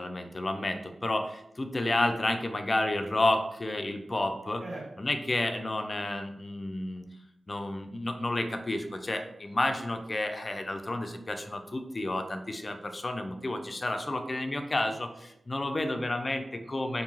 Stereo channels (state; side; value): normal; both; correlation 0.96